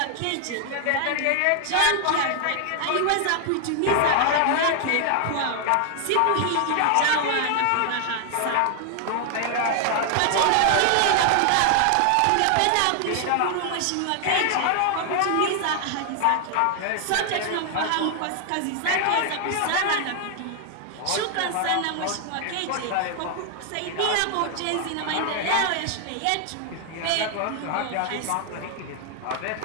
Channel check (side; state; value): both; different; correlation 0.00